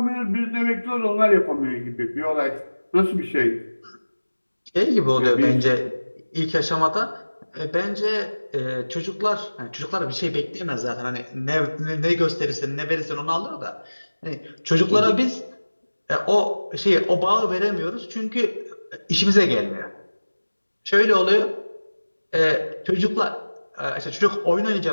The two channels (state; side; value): inverted; both; correlation -1.00